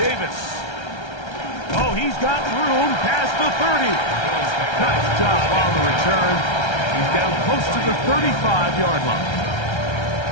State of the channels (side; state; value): right; late; 1.3 ms